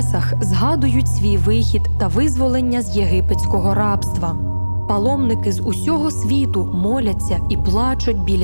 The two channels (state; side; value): inverted; both; correlation -1.00